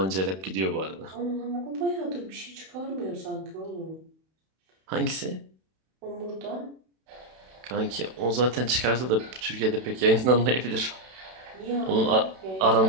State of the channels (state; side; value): late; left; 32 ms